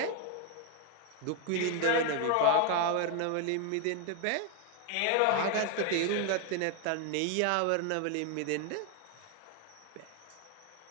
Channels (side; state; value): both; different; correlation 0.01